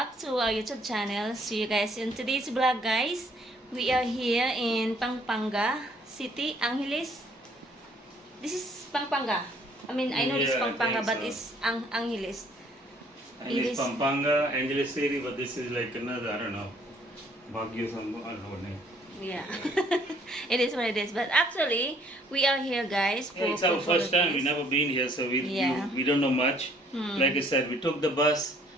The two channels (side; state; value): both; normal; correlation 0.62